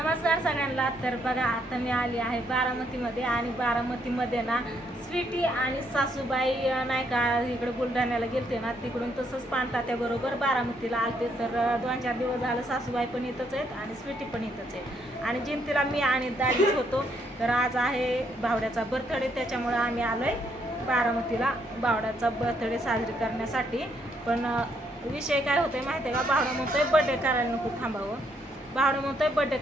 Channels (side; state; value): both; normal; correlation 0.73